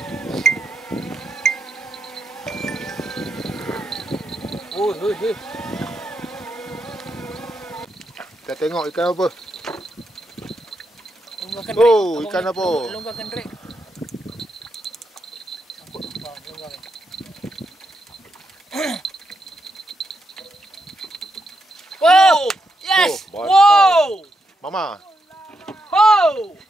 Oh, hei. Kita tengok ikan apa. Longgarkan Oh, drag. ikan apa? Longgarkan drag. Sangkut. Longgarkan. Wow! Yes! Oh, Wow! Mama. Wow!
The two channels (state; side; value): normal; both; correlation 0.82